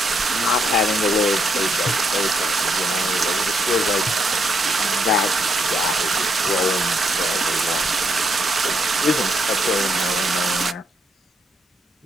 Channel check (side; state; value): both; normal; correlation 0.75